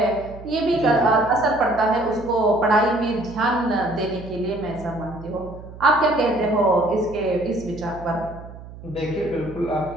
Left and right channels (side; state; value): right; noise; hum, 15 dB below the sound